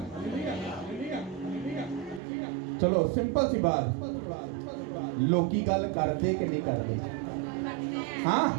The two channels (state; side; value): drops out; left; at 2.2 s